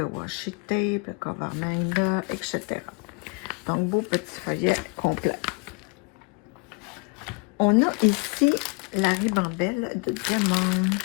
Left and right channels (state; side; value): quieter; right; 31.8 dB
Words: washi tape, le cover manga, etc. Donc, beau petit feuillet complet. On a ici la ribambelle de diamant.